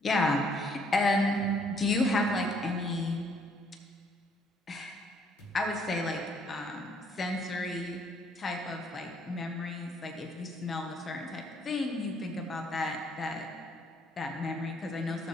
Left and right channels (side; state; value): both; normal; correlation 0.66